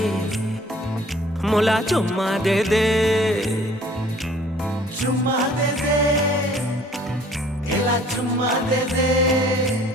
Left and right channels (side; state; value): both; normal; correlation 0.54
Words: मोला चुम्मा दे दे, चुम्मा दे दे केला चुम्मा दे दे।